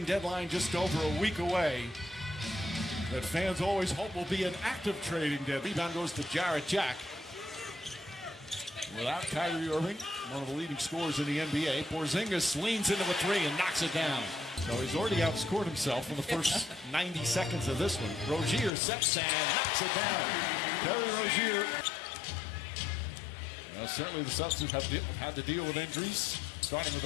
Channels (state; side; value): drops out; right; at 18.7 s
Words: deadline just over a week away that fans always hope will be an active trading deadline. Rebound goes to Jarrett Jack. Without Kyrie Irving, one of the leading scorers in the NBA, Porzingis leans into a three and knocks it down. So he's already outscored himself in the first 90 seconds of this one. Rozier sets and knocks it down. Terry Rozier. Well, certainly the Celtics have had to deal with injuries, starting with